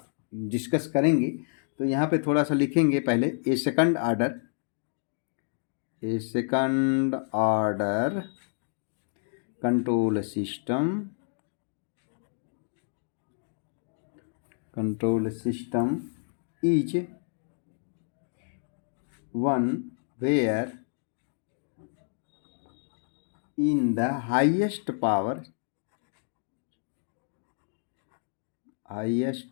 डिस्कस करेंगे। तो यहाँ पे थोड़ा सा लिखेंगे पहले a second order control system is one where in the highest power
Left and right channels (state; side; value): silent; right; digital silence